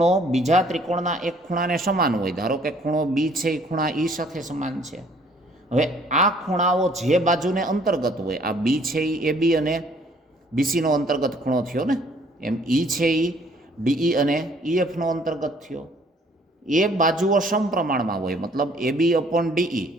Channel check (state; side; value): normal; both; correlation 0.60